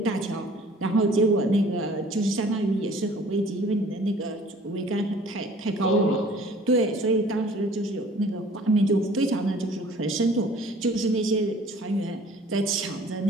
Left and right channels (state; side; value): normal; both; correlation 0.52